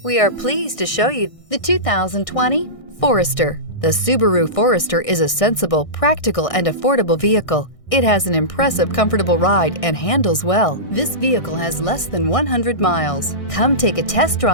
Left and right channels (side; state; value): right; late; 1.6 ms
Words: We are pleased to show you the 2020 Forester. The Subaru Forester is a sensible, practical, and affordable vehicle. It has an impressive, comfortable ride and handles well. This vehicle has less than 100 miles. Come take a test